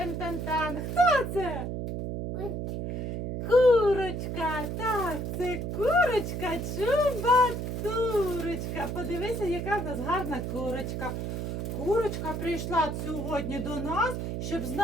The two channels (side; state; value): right; noise; hum, 3 dB below the sound